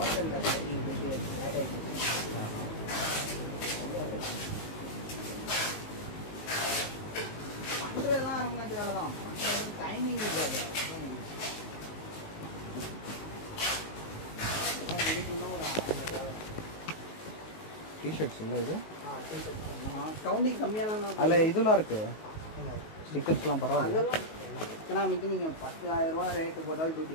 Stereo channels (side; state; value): right; late; 19 ms